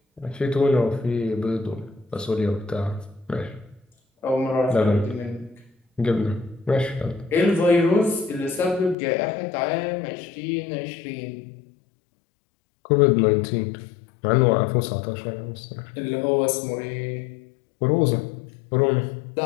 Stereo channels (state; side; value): drops out; right; at 9.0 s